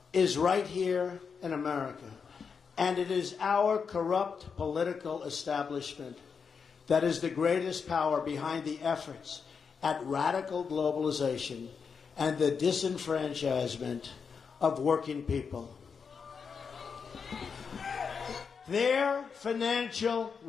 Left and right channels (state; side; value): quieter; right; 5.9 dB